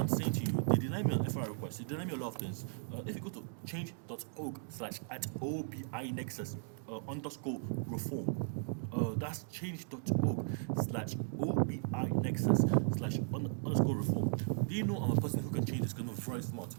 saying to you, they deny me an FRI request, they deny me a lot of things. If you go to change.org/@OBI Nexus underscore reform, that's change.org/OBI Nexus/underscore reform. Do you know I'm a person who can change this because I'm very smart?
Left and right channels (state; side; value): silent; left; digital silence